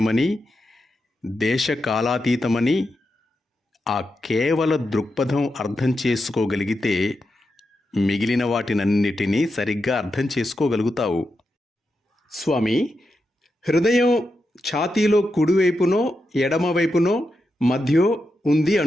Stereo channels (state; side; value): normal; both; correlation 0.87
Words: దేశకాలాతీతమని ఆ కేవల దృక్పథం అర్థం చేసుకోగలిగితే మిగిలిన వాటినన్నిటినీ సరిగ్గా అర్థం చేసుకోగలుగుతావు. స్వామి, హృదయం ఛాతీలో కుడివైపునో ఎడమవైపునో మధ్యో ఉంది